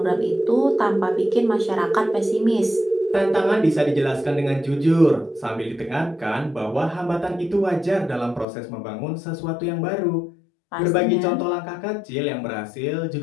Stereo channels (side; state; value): right; drops out; at 8.5 s